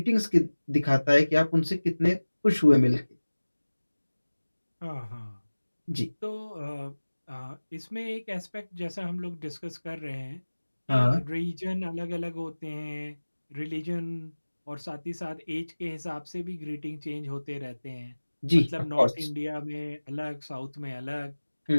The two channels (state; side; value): inverted; both; correlation -1.00